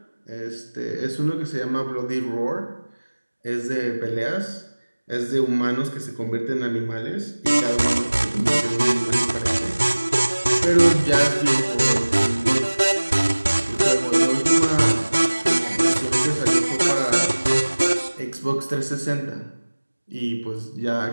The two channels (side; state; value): both; inverted; correlation -1.00